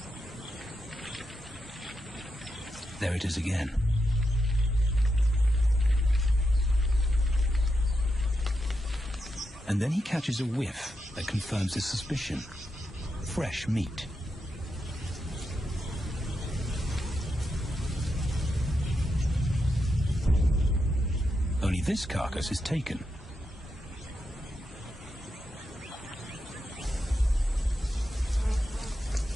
There it is again. And then he catches a whiff that confirms his suspicion. Fresh meat. Only this carcass is taken.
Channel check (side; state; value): both; normal; correlation 0.85